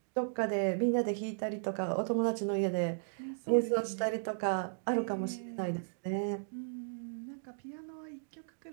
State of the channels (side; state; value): left; silent; digital silence